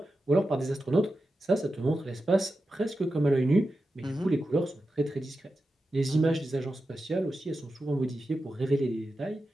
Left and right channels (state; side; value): normal; both; correlation 0.91